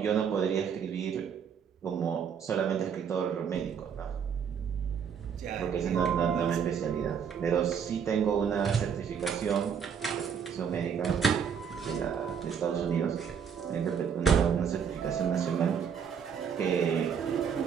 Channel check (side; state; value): left; quieter; 7.3 dB